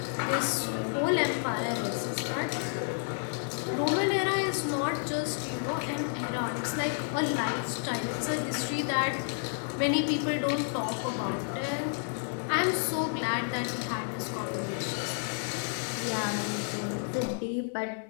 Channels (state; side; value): silent; right; 57 dB below the other